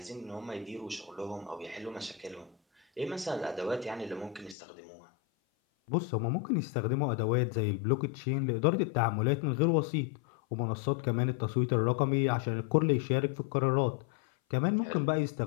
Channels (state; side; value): drops out; right; at 4.5 s